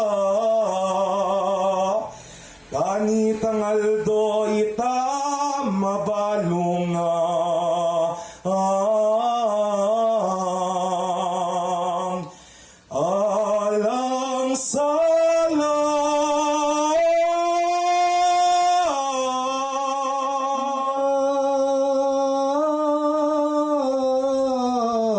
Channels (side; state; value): both; identical; correlation 1.00